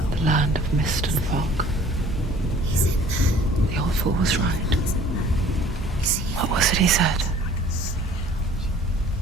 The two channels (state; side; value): normal; both; correlation 0.51